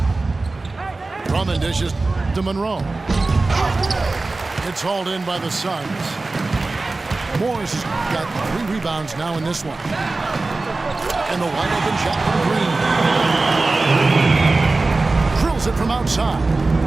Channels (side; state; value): left; quieter; 3.4 dB